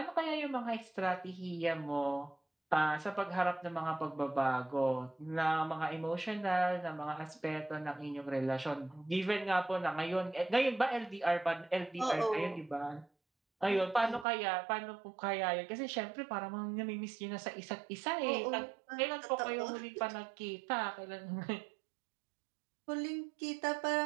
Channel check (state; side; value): drops out; left; at 14.2 s